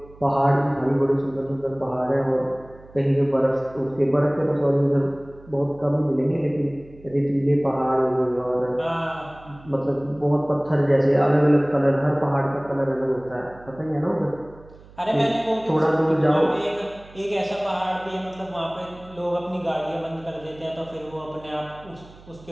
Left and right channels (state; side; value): noise; right; hum, 22 dB below the sound